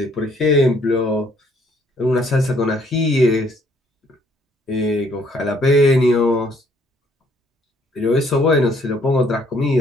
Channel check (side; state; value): both; normal; correlation 0.65